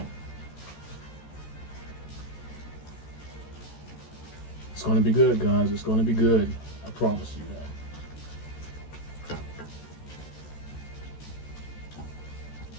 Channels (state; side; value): late; right; 14 ms